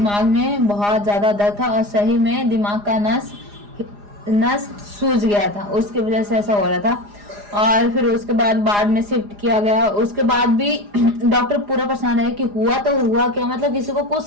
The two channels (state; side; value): late; left; 4.9 ms